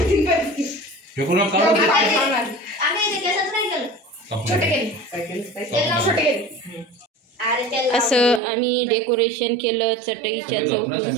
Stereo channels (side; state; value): left; drops out; at 8.4 s